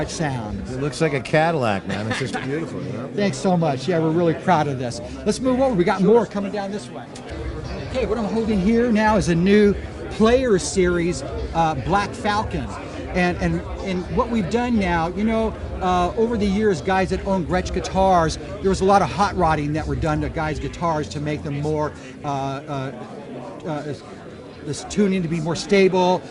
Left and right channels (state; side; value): identical; both; correlation 1.00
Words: sound. It looks like a Cadillac, man. It's just beautiful, you know? Thanks so much. Yeah, we're really proud of this. Let's move over. We got more coming down this way. Okay, what I'm holding here now is a new Player Series Black Falcon, and what we've done now, you know, over the years, guys that own Gretsch guitars, there was a lot of hot rodding that were done to guys' guitars to make them more this tuning to be more stable,